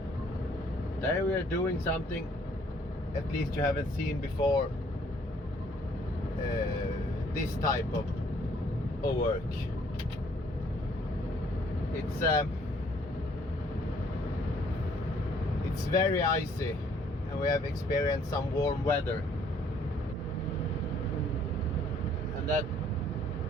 Today we are doing something at least you haven't seen before, this type of work. It's very icy and we have experienced some warm weather, and that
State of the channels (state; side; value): normal; both; correlation 0.62